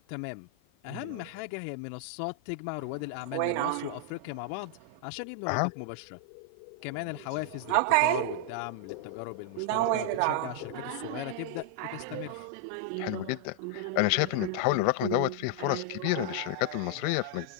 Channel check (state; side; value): different; both; correlation -0.01